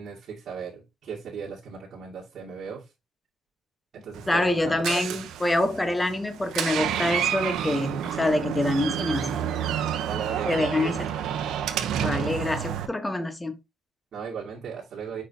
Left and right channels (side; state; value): both; normal; correlation 0.77